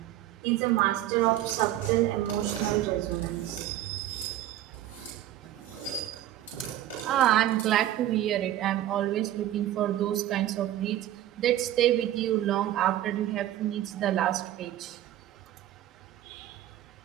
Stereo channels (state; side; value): quieter; left; 13.1 dB